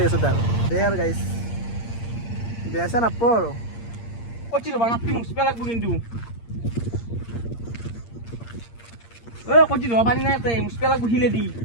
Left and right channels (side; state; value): right; late; 8.7 ms